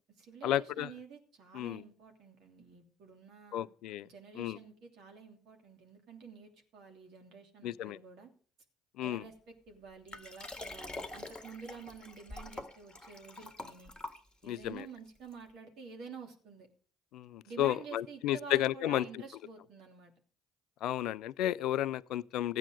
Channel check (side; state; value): right; quieter; 9.7 dB